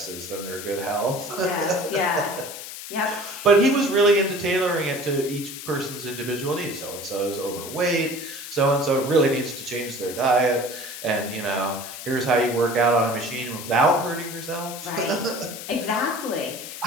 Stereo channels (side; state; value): left; noise; hiss, 10 dB below the sound